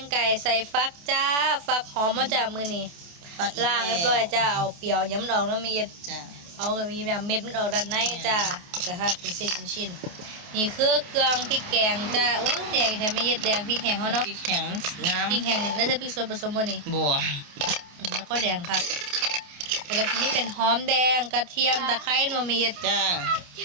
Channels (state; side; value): late; left; 28 ms